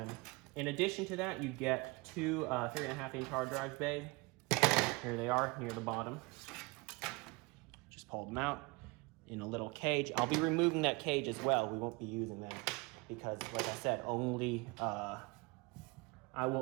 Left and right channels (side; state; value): left; quieter; 26.4 dB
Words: in addition to that, you get two 3.5-inch hard drive bays. Here they are, near the bottom. Just pull them out in a little cage. I'll be removing that cage as well. We won't be using them because, like I said, I